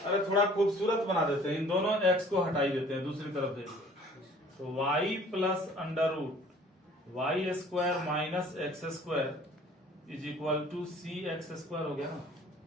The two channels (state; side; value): normal; both; correlation 0.52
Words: थोड़ा खूबसूरत बना देते हैं, इन दोनों x को हटाई देते हैं, दूसरी तरफ देखिए। तो y plus under root y square minus x square is equal to C x square हो गया ना।